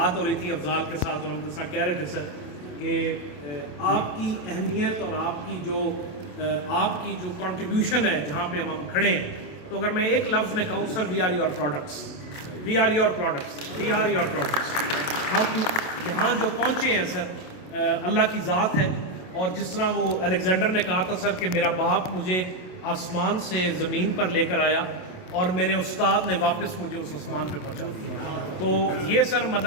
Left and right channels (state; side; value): late; right; 27 ms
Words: ہو رہی تھی افضال کے ساتھ اور ہم جس طرح کہہ رہے تھے سر کہ آپ کی اہمیت اور آپ کی جو کنٹریبیوشن ہے جہاں پہ ہم کھڑے ہیں، تو اگر میں ایک لفظ میں کہوں sir, we are your products, we are your products, we are your products. ہم یہاں جو پہنچے ہیں سر اللہ کی ذات ہے، اور جس طرح وہ الیگزینڈر نے کہا تھا سر کہ میرا باپ مجھے آسمان سے زمین پر لے کر آیا اور میرے استاد نے واپس مجھے اس آسمان پہ پہنچا دیا، تو یہ سر